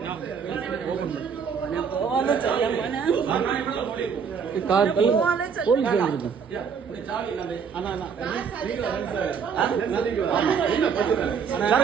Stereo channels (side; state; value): left; quieter; 6.5 dB